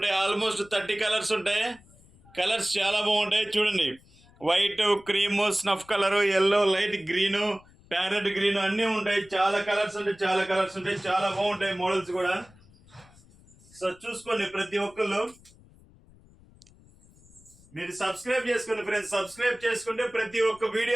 ఆల్మోస్ట్ 30 కలర్స్ ఉంటాయి. కలర్స్ చాలా బాగుంటాయి చూడండి. White, cream, snuff colour, yellow, light green, parrot green అన్నీ ఉంటాయి. చాలా కలర్స్ ఉంటాయి, చాలా కలర్స్ ఉంటాయి, చాలా బాగుంటాయి మోడల్స్ కూడా. సో చూసుకోండి ప్రతి ఒక్కళ్ళు. మీరు సబ్స్క్రైబ్ చేసుకోండి ఫ్రెండ్స్. సబ్స్క్రైబ్ చేసుకుంటే ప్రతి ఒక్క వీడియో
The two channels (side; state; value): left; noise; rumble, 27 dB below the sound